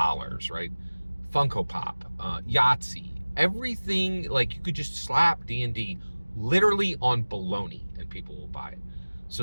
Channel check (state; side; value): inverted; both; correlation -1.00